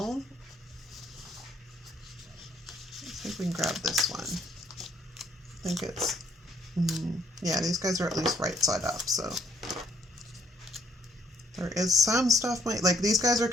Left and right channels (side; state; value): both; normal; correlation 0.68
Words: I think we can grab this one. I think it's, yeah, these guys are at least right side up, so. There is some stuff, like these guys are